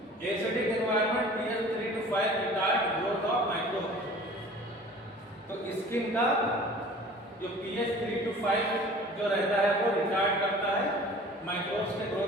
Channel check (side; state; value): both; normal; correlation 0.45